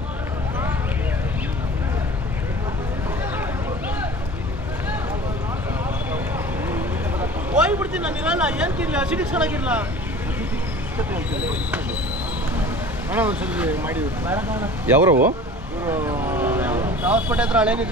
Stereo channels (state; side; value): normal; both; correlation 0.42